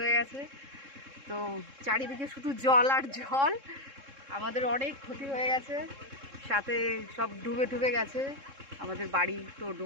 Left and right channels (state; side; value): late; left; 3.7 ms